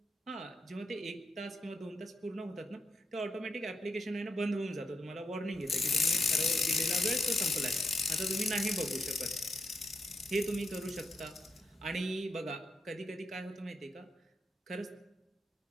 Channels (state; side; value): normal; both; correlation 0.83